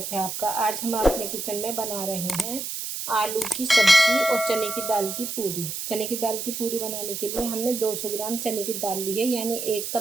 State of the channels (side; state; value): right; noise; hiss, 5 dB below the sound